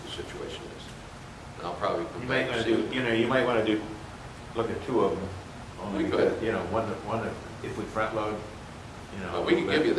the situation is. And I'll probably You come might back want and to see. do, you might want to look at 2 of them. Only We could. because, one, if we front load, Well, we can give you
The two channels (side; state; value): both; identical; correlation 1.00